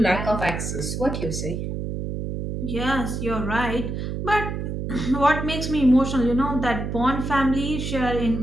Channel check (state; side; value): noise; right; hum, 4 dB below the sound